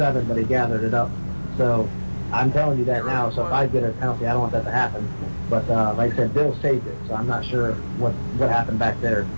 but he gathered it up. So I'm telling you that now. So if I get a penalty, I don't want that to happen. But like I said, Bill saved it, so I'm not sure what happened back there.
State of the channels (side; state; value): both; inverted; correlation -1.00